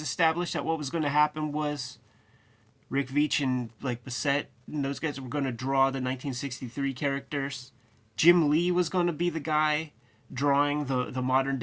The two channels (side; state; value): both; identical; correlation 1.00